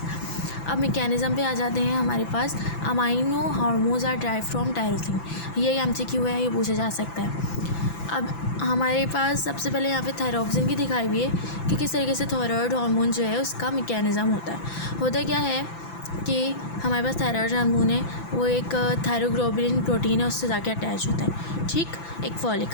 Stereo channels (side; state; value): right; late; 5.9 ms